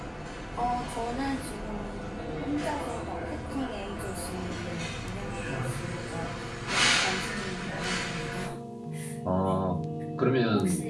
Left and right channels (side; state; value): both; identical; correlation 1.00